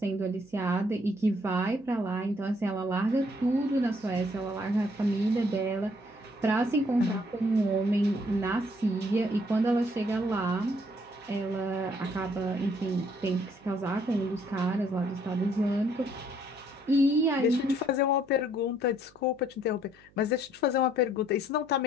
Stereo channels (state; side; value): noise; right; hum, 29 dB below the sound